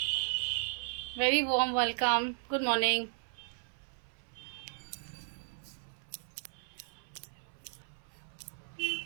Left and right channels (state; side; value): silent; left; 54 dB below the other